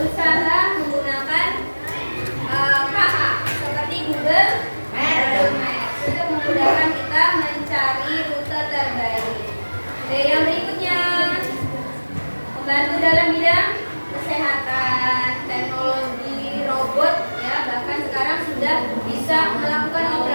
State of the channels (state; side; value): inverted; both; correlation -1.00